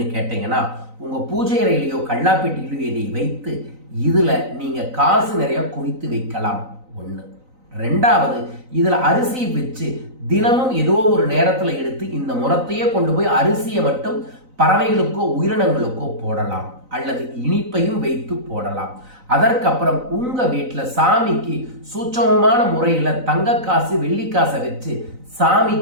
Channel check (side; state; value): left; late; 3.9 ms